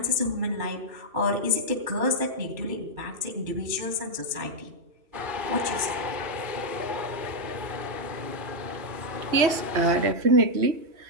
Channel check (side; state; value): left; late; 3.1 ms